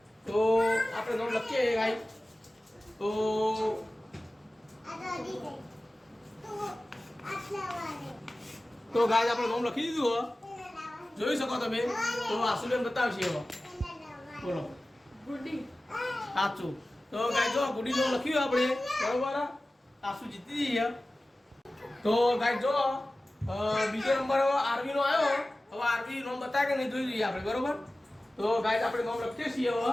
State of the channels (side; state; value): both; normal; correlation 0.96